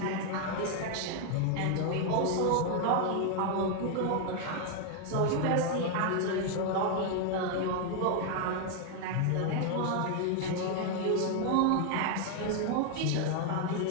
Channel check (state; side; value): different; both; correlation 0.00